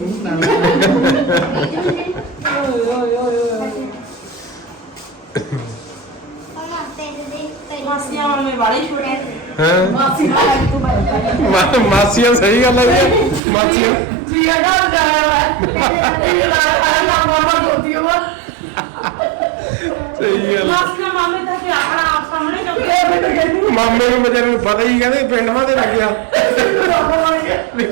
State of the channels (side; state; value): left; drops out; at 13.4 s